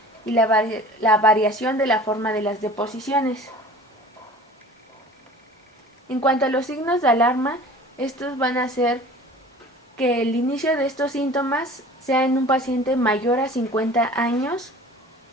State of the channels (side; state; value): both; normal; correlation 0.43